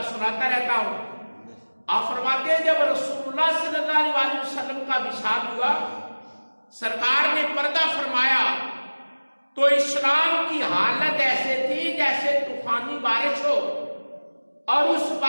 سناتا رہتا ہوں۔ آپ فرماتے ہیں جب رسول اللہ صلی اللہ علیہ وسلم کا وصال ہوا، سرکار نے پردہ فرمایا، تو اسلام کی حالت ایسے تھی جیسے طوفانی بارش ہو اور اس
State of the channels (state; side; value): inverted; both; correlation -1.00